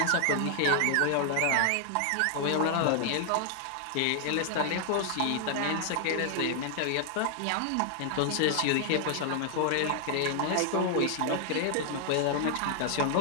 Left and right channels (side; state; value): both; different; correlation 0.00